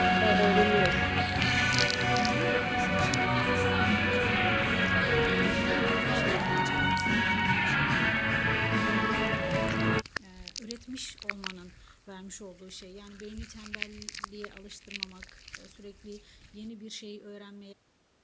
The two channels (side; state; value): both; identical; correlation 1.00